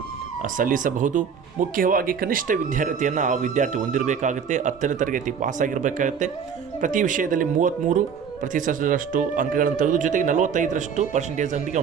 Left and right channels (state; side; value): quieter; left; 6.9 dB